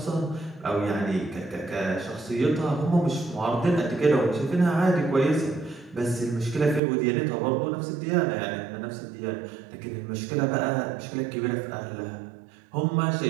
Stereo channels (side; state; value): left; drops out; at 6.8 s